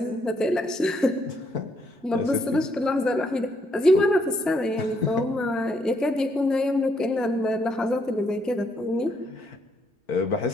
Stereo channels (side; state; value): both; normal; correlation 0.73